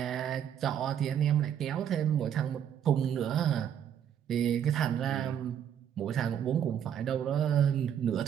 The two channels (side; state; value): left; quieter; 9.2 dB